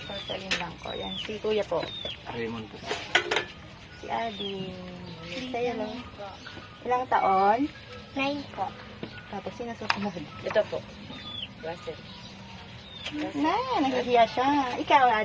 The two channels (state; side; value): identical; both; correlation 1.00